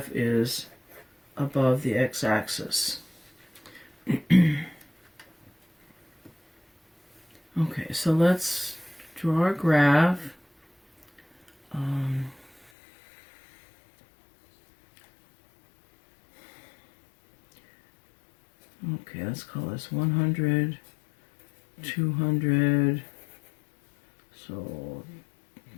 is above the x-axis. Okay, so let's draw our graph. Okay, let's call this 100, 200, so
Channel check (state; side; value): drops out; right; at 12.7 s